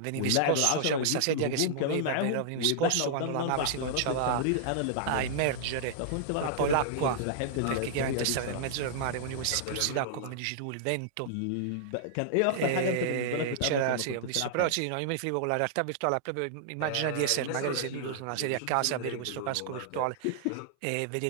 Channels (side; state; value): both; different; correlation -0.01